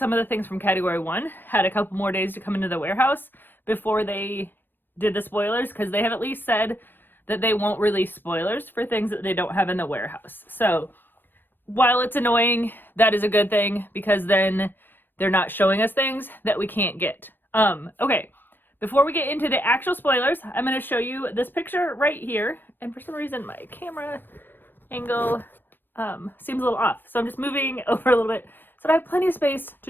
of the things from Category 1 had a couple more days to come into the warehouse before they did the spoilers, because they have at least said that they won't release spoilers for things that they don't have in the warehouse. So while it's annoying, that is a good thing, because then they're not showing us things that we can't get. Okay, before we get into the actual spoilers, I'm going to show you this picture right here. And for some reason, my camera angle seems a little off. So I'm just moving over a little bit so that I have plenty of space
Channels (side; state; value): right; late; 0.095 ms